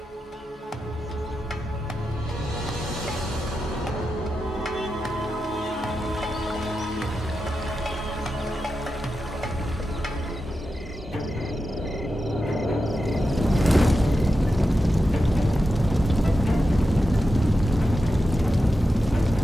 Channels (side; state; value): both; normal; correlation 0.90